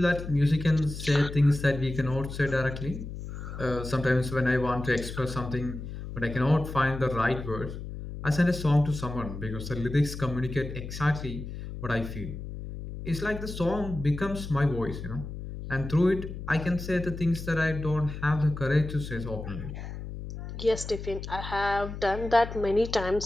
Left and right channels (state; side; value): noise; left; hum, 9 dB below the sound